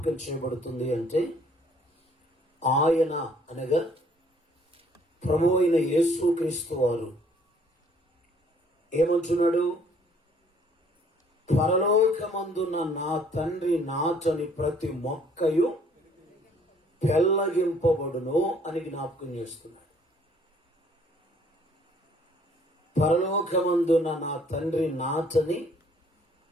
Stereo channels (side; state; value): both; normal; correlation 0.61